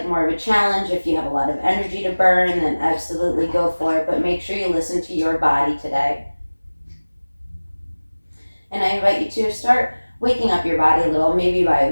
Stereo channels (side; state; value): both; inverted; correlation -1.00